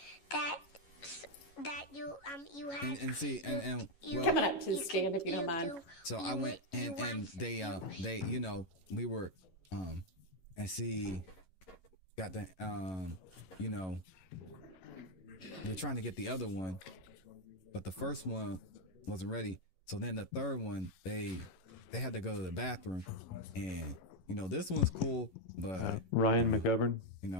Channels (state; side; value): late; right; 11 ms